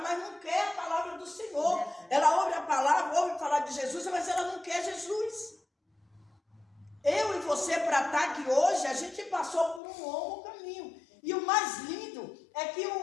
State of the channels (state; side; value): drops out; right; at 9.8 s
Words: não quer a palavra do Senhor. Ela ouve a palavra, ouve falar de Jesus, mas ela não quer Jesus. Eu e você, para estar aqui hoje, a gente passou por um longo caminho. E o mais lindo é que